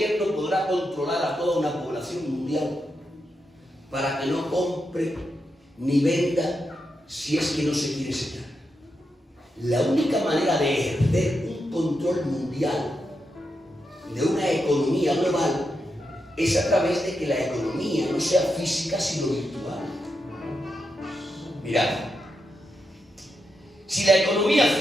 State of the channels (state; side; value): normal; both; correlation 0.85